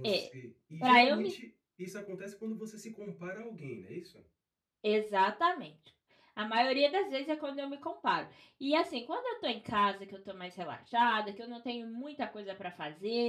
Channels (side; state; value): both; identical; correlation 1.00